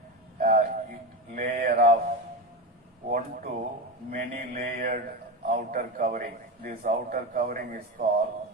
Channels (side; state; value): both; normal; correlation 0.18